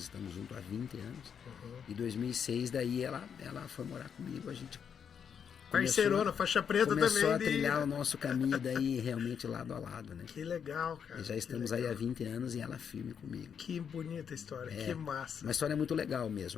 estamos juntos há 20 anos. E 2006 daí ela foi morar comigo, a gente parceirona, faixa preta também. Começou a trilhar o nosso caminho daí realmente lado a lado, né? Que legal, cara. E já estamos aí há 20 anos e ela firme comigo. Que bonita história, que massa. Uma história muito legal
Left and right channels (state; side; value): quieter; right; 7.4 dB